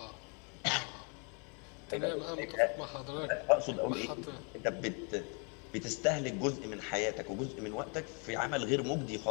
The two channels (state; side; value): quieter; right; 35.8 dB